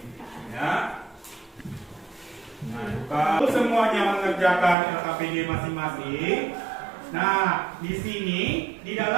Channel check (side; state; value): left; drops out; at 4.8 s